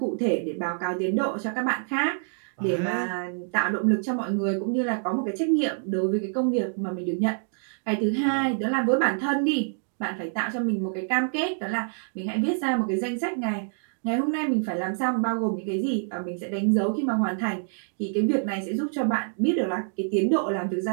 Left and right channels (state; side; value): silent; left; digital silence